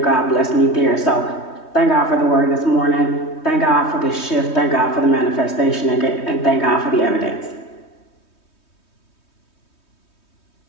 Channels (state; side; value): late; right; 3.2 ms